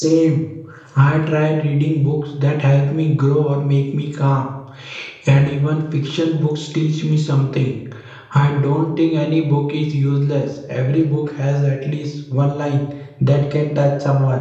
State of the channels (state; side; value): identical; both; correlation 1.00